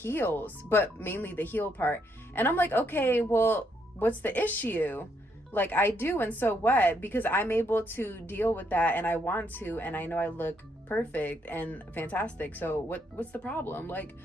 but mainly the heel part. And I'm like, okay, well, what's the issue? Like, I do, and so what? Because I'm able to deal with that, and I want to, and I know I look perfect and fantastic. So what's the problem? Like,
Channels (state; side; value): normal; both; correlation 0.74